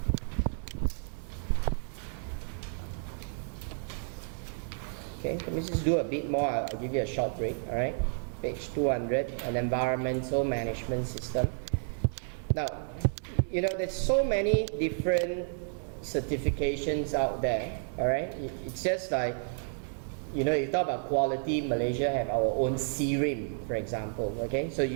Okay, let me just do a bit more. I'll give you a short break. Alright, page 200, an environmental management system. Now, you know, there's so many different certifications out there. Alright, it's just like, you know, you talk about quality, Malaysia have our own CRIM, for example. Okay, so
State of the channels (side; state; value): left; silent; digital silence